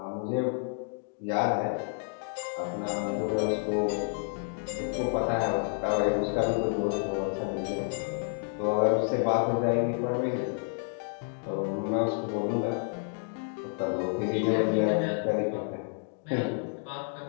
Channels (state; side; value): silent; right; 58 dB below the other